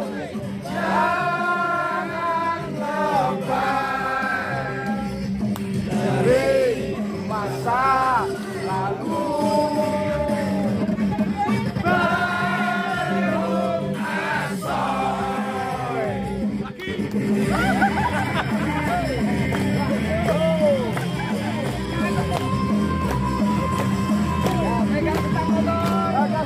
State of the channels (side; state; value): both; identical; correlation 1.00